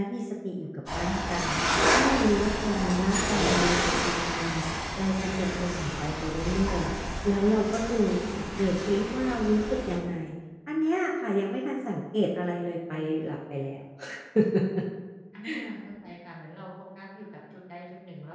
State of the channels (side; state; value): both; identical; correlation 1.00